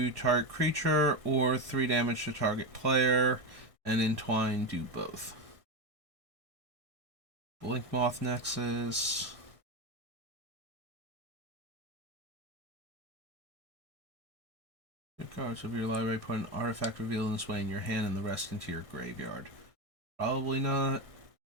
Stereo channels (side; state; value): left; late; 1.6 ms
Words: target creature, or 3 damage to target player, and Entwine do both. Blink Moth Nexus. Cards of your library, put an artifact revealed in this way in your hand and the rest into your graveyard. Probably not.